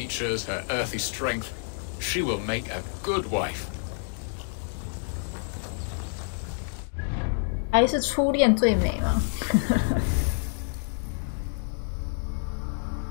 her earthy strength. She will make a good wife. 还是初恋最美吗？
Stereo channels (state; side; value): silent; right; digital silence